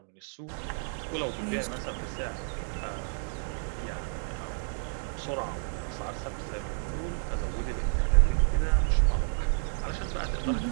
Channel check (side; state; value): left; silent; 57 dB below the other